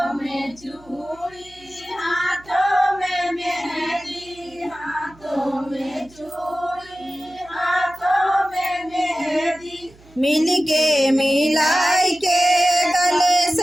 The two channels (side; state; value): right; noise; hum, 26 dB below the sound